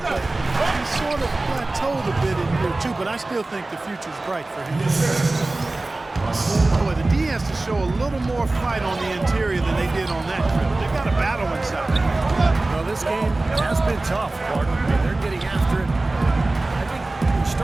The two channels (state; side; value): quieter; left; 3.0 dB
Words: but he sort of plateaued a bit in year 2, but I still think the future's bright for him. Boy, the D has to show a little more fight on the interior than they did on that trip. They've got a battle inside. Well, this game has been tough, Gordon. I mean, they're getting after it. I think they're